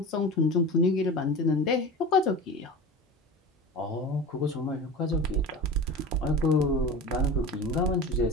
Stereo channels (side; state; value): both; normal; correlation 0.31